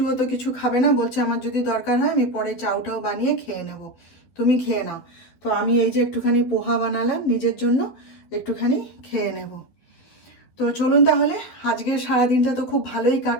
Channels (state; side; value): late; right; 12 ms